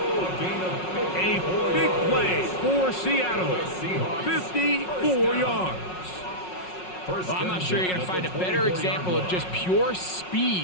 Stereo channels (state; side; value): late; right; 5.5 ms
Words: A big play for Seattle. 54 yards. Well, I'm not sure you're going to find a better example of just pure